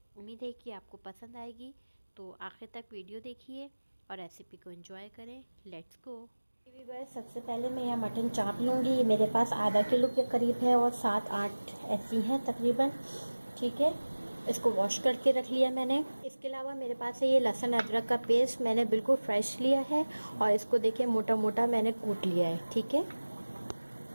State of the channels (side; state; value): both; inverted; correlation -1.00